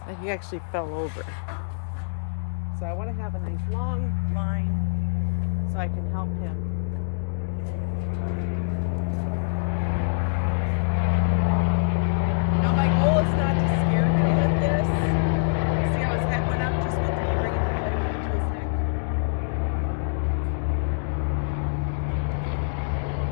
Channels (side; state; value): right; silent; digital silence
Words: he actually fell over. So I want to have a nice long line so I can help him. Now my goal is not to scare him with this. See how his head went up just with bringing the flag over to his neck?